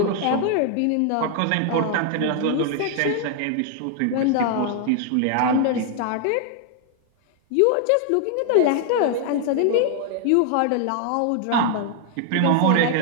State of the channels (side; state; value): both; different; correlation 0.00